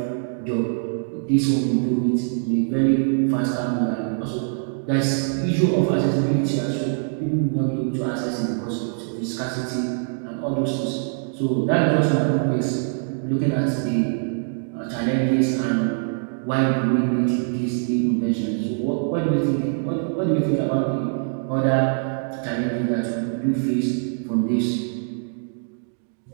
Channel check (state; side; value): silent; left; digital silence